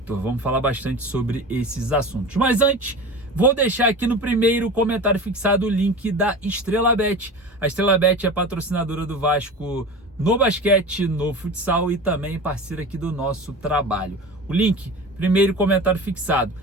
Vamos falar bastante sobre esses assuntos. Mas antes, vou deixar aqui no primeiro comentário fixado o link da Estrela Bet. A Estrela Bet é patrocinadora do Vasco no basquete, no futsal e também parceira aqui do nosso trabalho. O link, primeiro comentário fixado.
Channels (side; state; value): both; normal; correlation 0.32